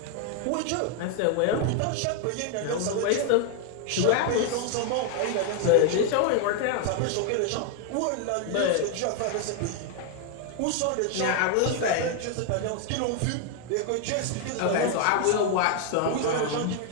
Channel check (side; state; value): both; different; correlation 0.01